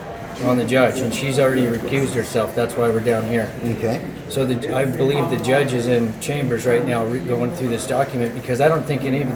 on the judge, and she's already recused herself. That's why we're down here. Okay. So I believe the judge is in chambers right now going through this document, because I don't think any of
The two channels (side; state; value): both; identical; correlation 1.00